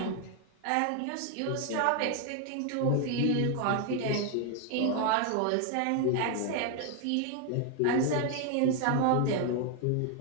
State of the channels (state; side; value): different; both; correlation 0.00